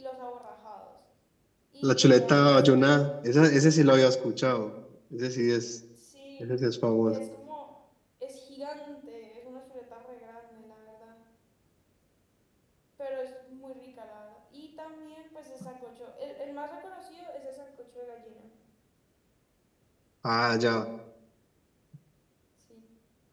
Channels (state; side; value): identical; both; correlation 1.00